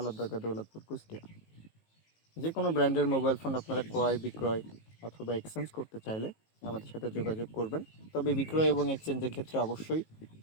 দরগা, দৌলতপুর, কুষ্টিয়া। যে কোনো ব্র্যান্ডের মোবাইল ফোন আপনারা ক্রয় বিক্রয় অথবা এক্সচেঞ্জ করতে চাইলে আমাদের সাথে যোগাযোগ করবেন। তবে বিক্রয় এবং এক্সচেঞ্জের ক্ষেত্রে অবশ্যই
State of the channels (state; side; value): late; right; 19 ms